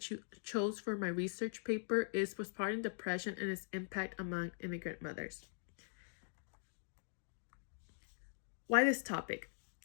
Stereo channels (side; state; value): right; silent; digital silence